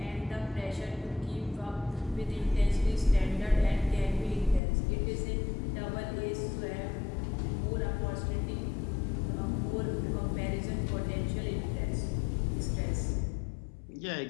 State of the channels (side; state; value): right; drops out; at 4.6 s